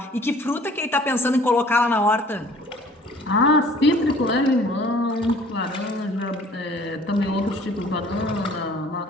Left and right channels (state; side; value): normal; both; correlation 0.52